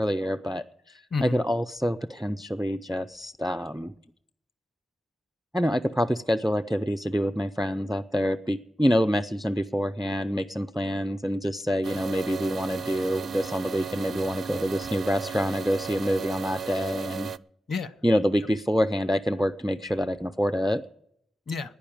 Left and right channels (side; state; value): both; normal; correlation 0.93